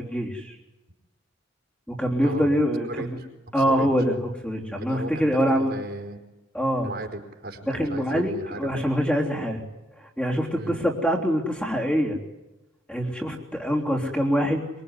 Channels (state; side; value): normal; both; correlation 0.79